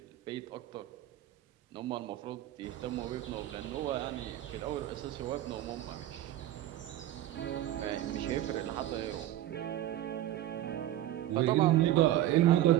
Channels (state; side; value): quieter; left; 13.4 dB